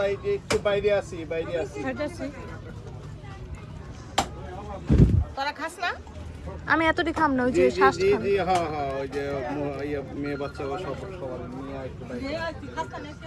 একটু বাইরে আছি খাইতেছি তোরা খাস না আমি এতটি খাম না ওই জি যে জি শ্বাস জি খাম। জি হ্যাঁ হ্যাঁ ওই যে মেয়ে বাচ্চা সব সবার নিয়ে একটু বাইরে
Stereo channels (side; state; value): both; identical; correlation 1.00